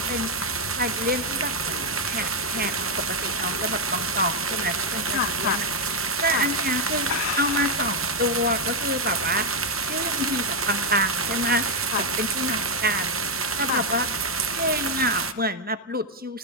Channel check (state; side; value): normal; both; correlation 0.01